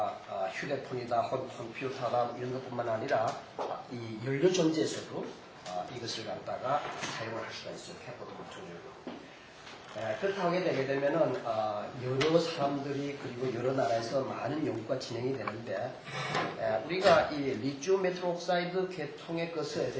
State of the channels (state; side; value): identical; both; correlation 1.00